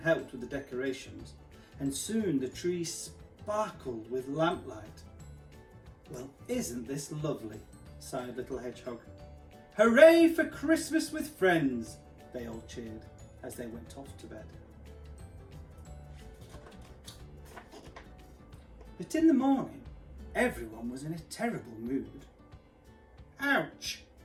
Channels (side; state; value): both; identical; correlation 1.00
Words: with the decorations, and soon the tree sparkled with lamplight. Well, isn't this lovely? Sighed Little Hedgehog. Hooray for Christmas with friends! They all cheered as they went off to bed. But in the morning, everyone was in a terrible mood. Ouch!